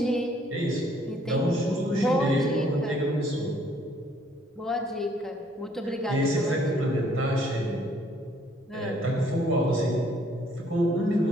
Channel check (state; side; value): normal; both; correlation 0.64